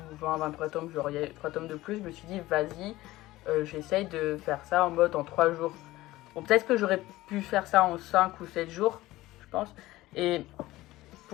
20-23 tomes, genre il y a 3 tomes de plus. Je me suis dit, vas-y, j'essaye de faire ça en mode en 3 jours. Bon, peut-être que j'aurais pu faire ça en 5 ou 7 jours, je pense. Et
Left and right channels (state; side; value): quieter; right; 17.5 dB